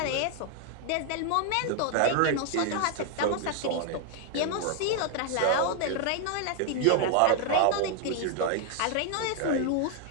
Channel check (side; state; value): both; different; correlation 0.00